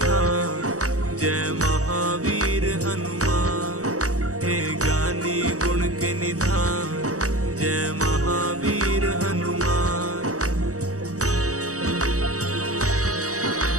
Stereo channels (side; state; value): left; late; 0.66 ms